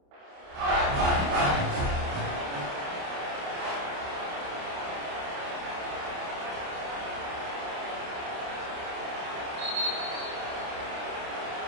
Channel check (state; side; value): late; left; 29 ms